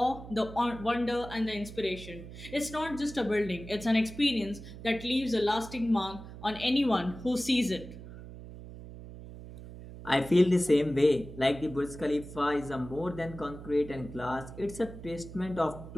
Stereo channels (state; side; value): noise; right; hum, 13 dB below the sound